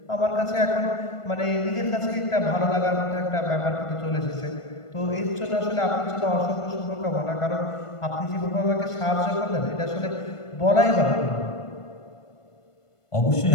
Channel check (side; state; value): right; late; 1.5 ms